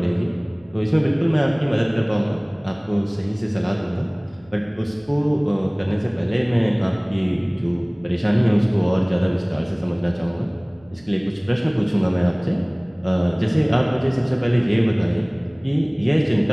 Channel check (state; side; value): noise; right; hum, 28 dB below the sound